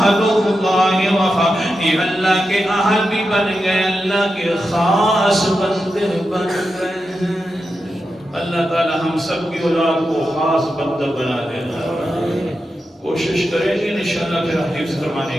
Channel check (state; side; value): normal; both; correlation 0.89